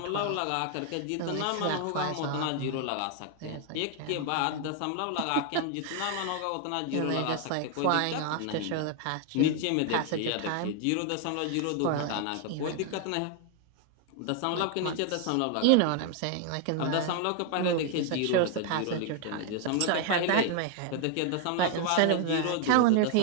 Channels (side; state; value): both; different; correlation 0.00